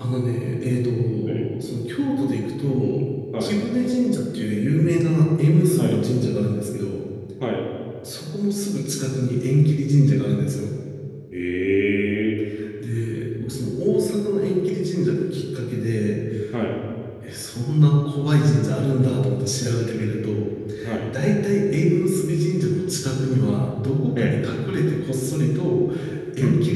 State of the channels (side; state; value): both; identical; correlation 1.00